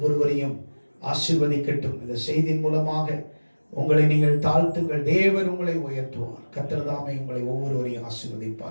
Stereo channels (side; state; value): both; inverted; correlation -1.00